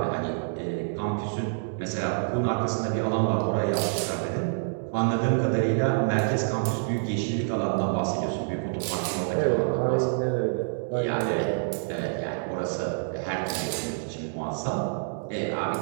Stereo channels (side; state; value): left; silent; digital silence